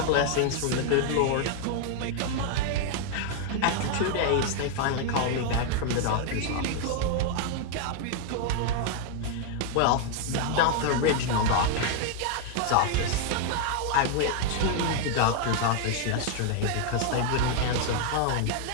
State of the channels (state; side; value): different; both; correlation 0.00